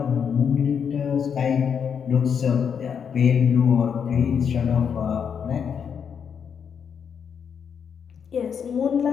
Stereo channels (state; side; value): quieter; right; 7.2 dB